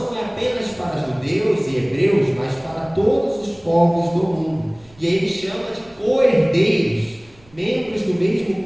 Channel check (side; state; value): right; noise; rumble, 29 dB below the sound